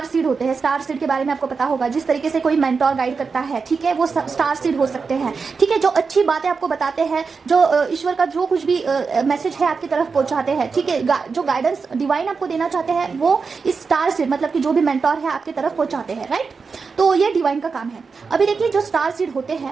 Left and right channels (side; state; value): left; quieter; 5.0 dB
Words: सीड होते हैं, स्टार सीड के बारे में आपको पता होगा, जिस तरीके से कोई मेंटोर गाइड करता है, ठीक है, वो स्टार सीड हो सकते हैं, ठीक है। जो अच्छी बातें आपको बताते हैं, जो ईश्वर का जो कुछ भी मैसेज है आपकी तरफ पहुंचाते हैं, ठीक है, जो गाइडेंस डिवाइन आपको देना चाहते हैं, वो इस स्टार सीड मतलब कि जो भी मेंटोर है आपकी तरफ पहुंचाते हैं, राइट। तो ये डिवाइन का काम है। अभी देखिए जो स्टार सीड होते